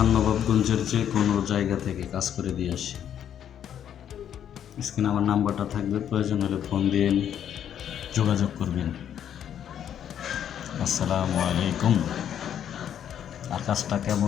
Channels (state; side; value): quieter; right; 9.6 dB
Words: নবাবগঞ্জের যে কোনো জায়গা থেকে কাজ করে দিয়ে আসি। স্ক্রিনে আমার নাম্বারটা থাকবে, প্রয়োজন হলে ফোন দিয়ে যোগাযোগ করবেন। আসসালামু আলাইকুম। আর কাজটা